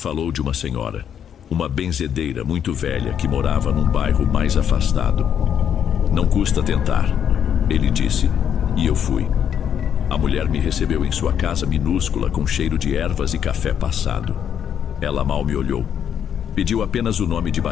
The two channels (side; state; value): right; quieter; 8.8 dB